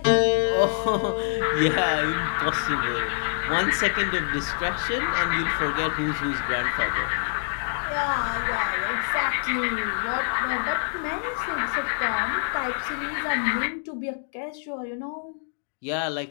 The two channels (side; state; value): right; silent; digital silence